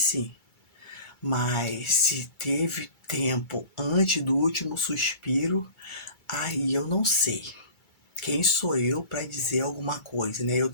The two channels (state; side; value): late; right; 2.3 ms